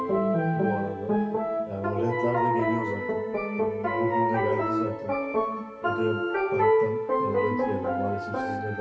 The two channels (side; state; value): both; identical; correlation 1.00